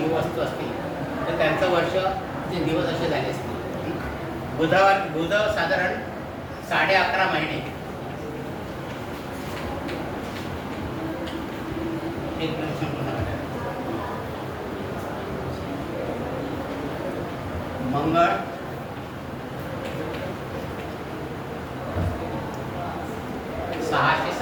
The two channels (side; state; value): both; identical; correlation 1.00